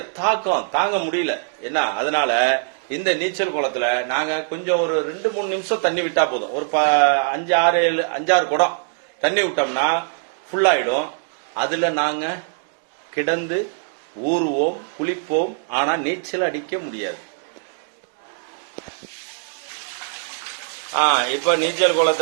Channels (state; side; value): silent; left; digital silence